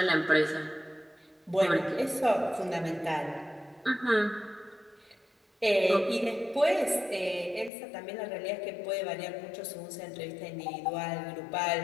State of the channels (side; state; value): right; drops out; at 7.7 s